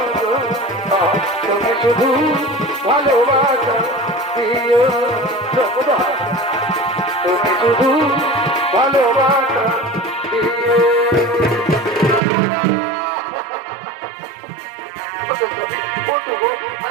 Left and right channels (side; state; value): left; drops out; at 12.2 s